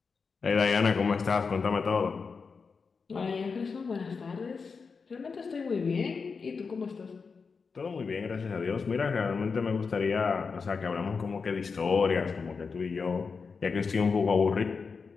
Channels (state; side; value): quieter; right; 5.1 dB